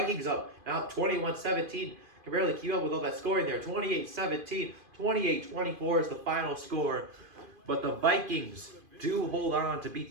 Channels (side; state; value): left; late; 2.5 ms